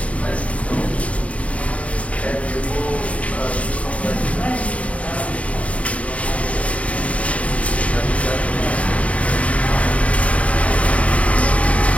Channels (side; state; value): right; late; 0.066 ms